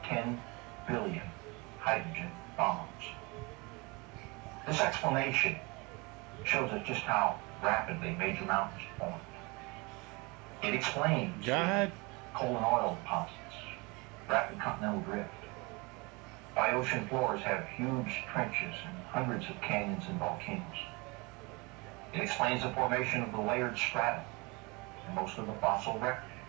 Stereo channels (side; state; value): left; quieter; 27.0 dB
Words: 10 billion hydrogen bombs. This explanation shows us just how rapidly major mountains formed. It explains coal and oil deposits, rapid continental drift, why ocean floors have huge trenches and hundreds of canyons and volcanoes. It explains the formation of the layered strata in most of the fossil record,